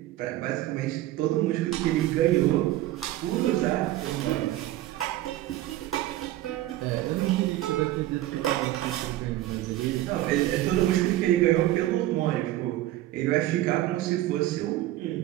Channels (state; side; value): quieter; left; 15.2 dB